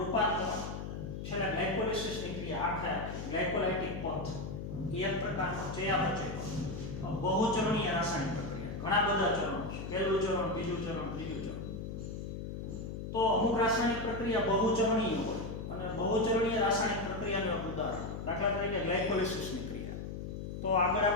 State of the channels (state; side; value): noise; left; hum, 7 dB below the sound